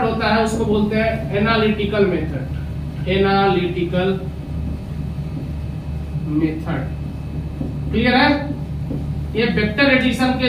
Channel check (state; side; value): identical; both; correlation 1.00